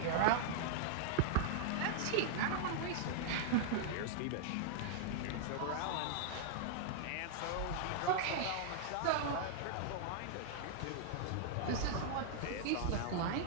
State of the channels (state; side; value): different; both; correlation -0.01